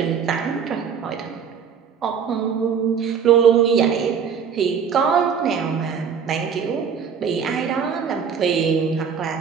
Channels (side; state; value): left; quieter; 6.9 dB